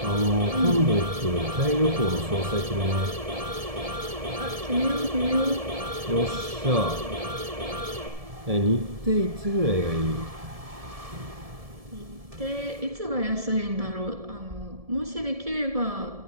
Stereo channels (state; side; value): late; left; 1.7 ms